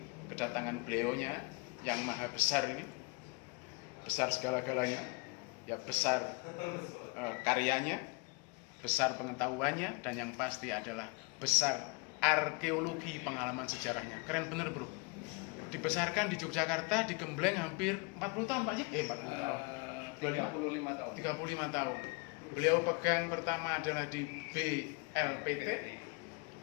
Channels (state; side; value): quieter; right; 30.2 dB